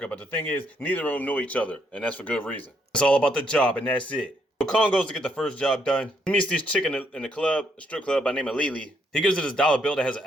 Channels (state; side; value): normal; both; correlation 0.73